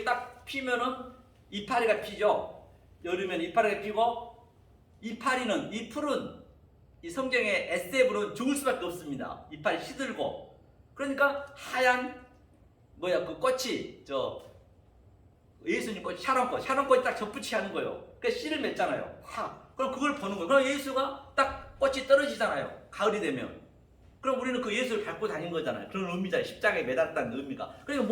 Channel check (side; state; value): both; identical; correlation 1.00